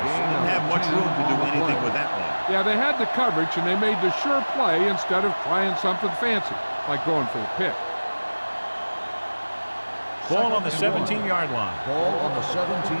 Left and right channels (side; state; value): both; inverted; correlation -1.00